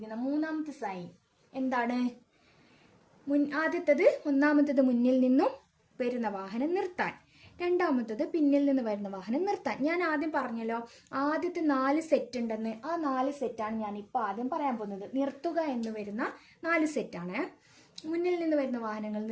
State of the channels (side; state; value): both; identical; correlation 1.00